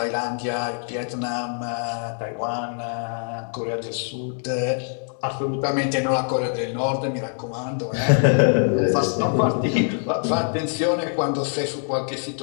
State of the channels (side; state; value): right; silent; 57 dB below the other